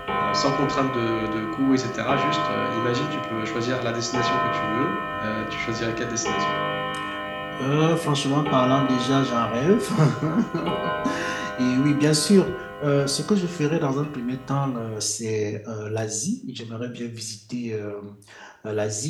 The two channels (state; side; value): identical; both; correlation 1.00